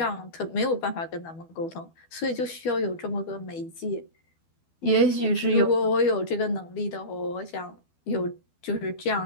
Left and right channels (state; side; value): late; right; 12 ms